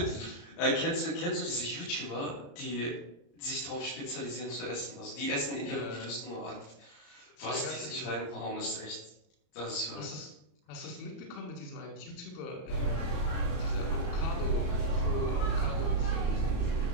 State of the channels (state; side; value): late; right; 34 ms